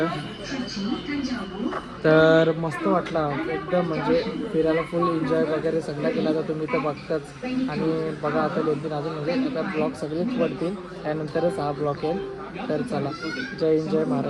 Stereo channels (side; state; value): both; identical; correlation 1.00